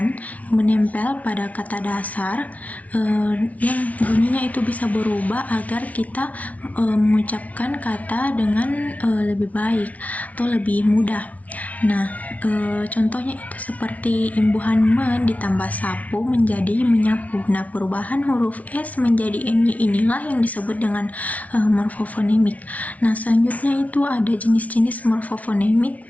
menempel pada kata dasar yang bunyinya itu bisa berubah agar kita mengucapkan kata dengan lebih baik atau lebih mudah. Nah, contohnya itu seperti imbuhan men ditambah sapu menjadi menyapu. Nah, perubahan huruf S menjadi NY inilah yang disebut dengan morfofonemik. Nah, selanjutnya itu ada jenis-jenis morfofonemik.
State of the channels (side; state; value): right; late; 0.069 ms